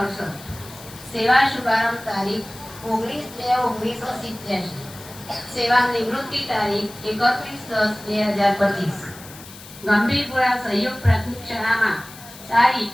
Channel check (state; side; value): noise; left; hiss, 17 dB below the sound